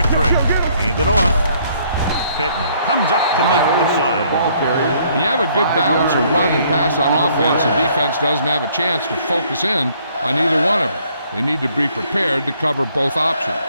Hand it off. Pittman comes up to make the play. When you have a good balance of run and pass on offense, the defense doesn't have a chance to focus in on either one of them. They need to be prepared to cover both options.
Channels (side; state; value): both; inverted; correlation -0.64